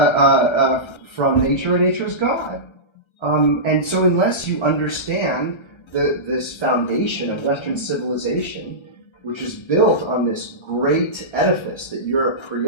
nature, and nature is God. And so unless you understand this foundation of Western civilization, which is built on this great edifice that Europe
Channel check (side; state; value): right; late; 1.3 ms